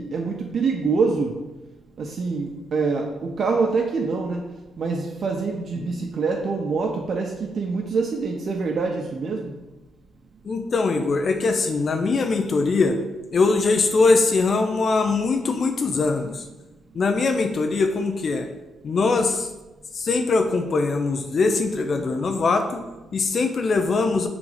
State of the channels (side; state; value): both; normal; correlation 0.81